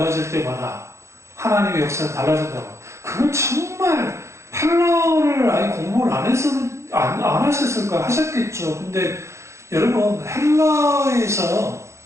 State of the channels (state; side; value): late; left; 0.14 ms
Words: 때마다 하나님의 역사가 달라진다고. 그건 정말 헬라어를 아예 공부를 안 하셨을까? 하셨겠죠. 근데 여러분 헬라에서